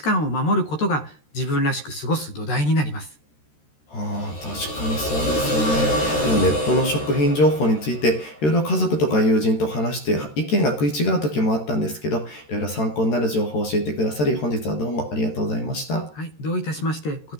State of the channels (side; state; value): right; late; 13 ms